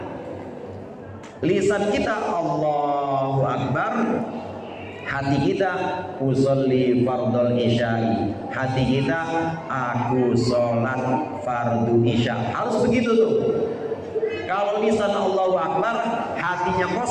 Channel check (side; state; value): both; identical; correlation 1.00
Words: lisan kita Allahu Akbar, hati kita usolli fardul isya'i, hati kita aku sholat fardu isya. Harus begitu tuh. Kalau lisan Allahu Akbar, hatinya